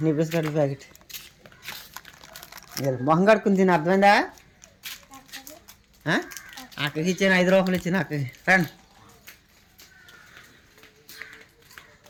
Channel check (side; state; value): both; identical; correlation 1.00